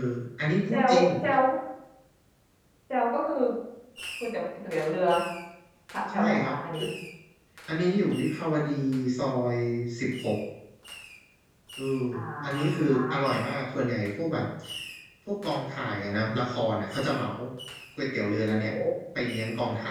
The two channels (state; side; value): identical; both; correlation 1.00